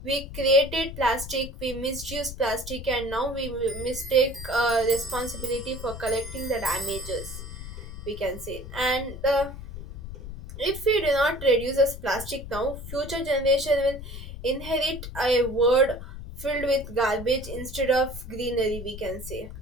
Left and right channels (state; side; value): noise; left; rumble, 10 dB below the sound